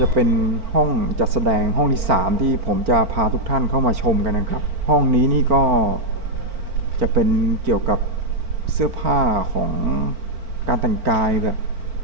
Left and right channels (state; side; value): late; left; 4.4 ms